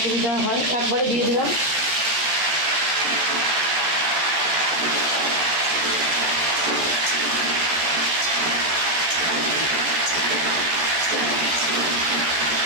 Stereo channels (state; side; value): late; left; 13 ms